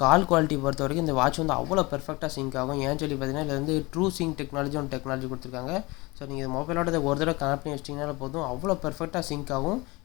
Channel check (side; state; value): right; quieter; 23.7 dB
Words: கால் குவாலிட்டி பொறுத்த வரைக்கும் இந்த வாட்ச் வந்து அவ்வளோ பெர்ஃபெக்டாக சிங்க் ஆகும். ஏன்னு சொல்லி பார்த்தீங்கன்னா இதில் வந்து ட்ரூ சிங்க் டெக்னாலஜி கொடுத்துருக்காங்க. ஸோ நீங்கள் இந்த மொபைலோட ஒரு தடவை கனெக்ட் பண்ணி வச்சிட்டிங்கனால போதும், அவ்வளோ பெர்ஃபெக்டாக சிங்க் ஆகும்.